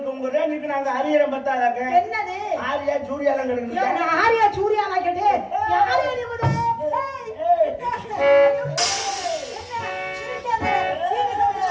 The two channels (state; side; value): identical; both; correlation 1.00